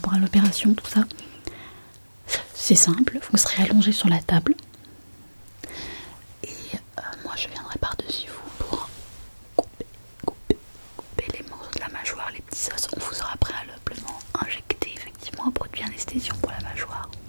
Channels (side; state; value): both; inverted; correlation -1.00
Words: à l'opération, tout ça? C'est simple, vous serez allongé sur la table. Et moi je viendrai par-dessus vous pour couper les morceaux de la mâchoire, les petits os. On vous aura préalablement injecté effectivement un produit anesthésiant pour la mâchoire.